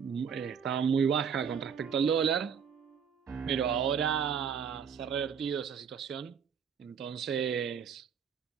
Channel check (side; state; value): left; quieter; 7.2 dB